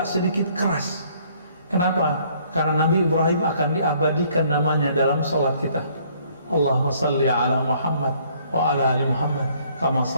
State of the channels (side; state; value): both; inverted; correlation -0.62